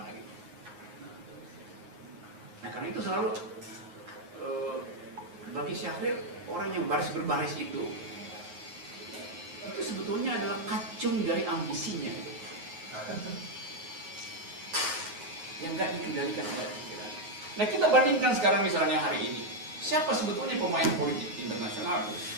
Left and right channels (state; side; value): late; left; 9.5 ms